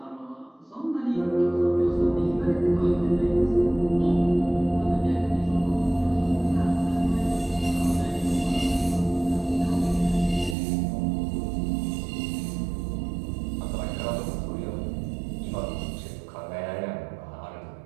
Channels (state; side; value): drops out; left; at 10.6 s